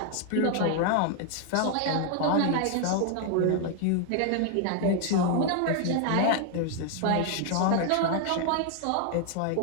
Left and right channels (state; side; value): different; both; correlation 0.00